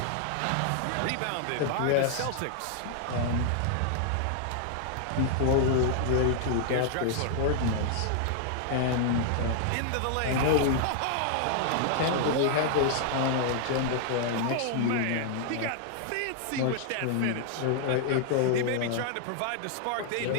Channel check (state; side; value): different; both; correlation 0.00